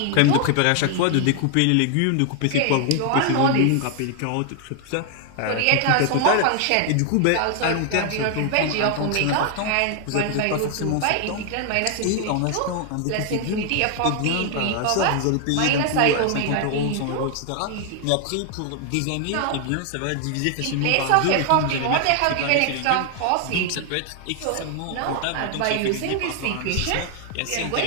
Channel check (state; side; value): different; both; correlation 0.00